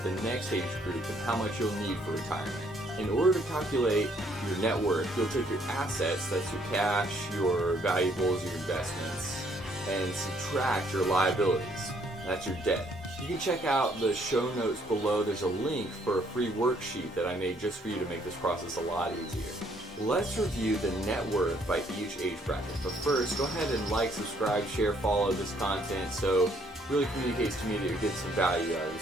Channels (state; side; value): normal; both; correlation 0.67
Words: the next age group and how much you'll need for retirement. In order to calculate your net worth, you'll take your assets, that's your cash, your valuables, your investments, and subtract your liabilities, that's your debt. You can check out the show notes below. There's a link for a free worksheet that I made just for you to make this process a lot easier. Let's review the net worth by each age bracket. But first, go ahead and like, subscribe, share, follow this content so it really communicates to me that you're getting some value out of this